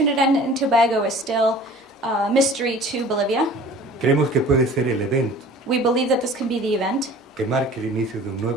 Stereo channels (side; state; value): both; normal; correlation 0.45